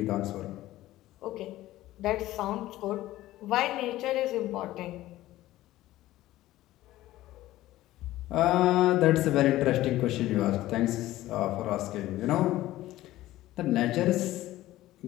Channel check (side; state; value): right; quieter; 15.7 dB